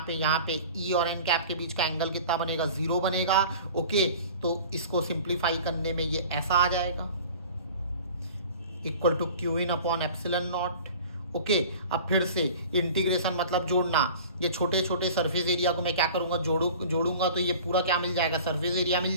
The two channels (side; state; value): both; inverted; correlation -0.42